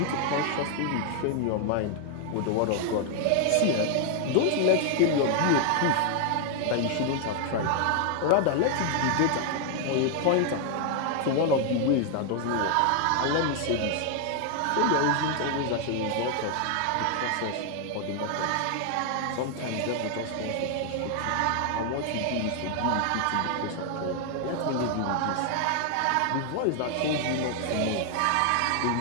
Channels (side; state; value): both; different; correlation 0.00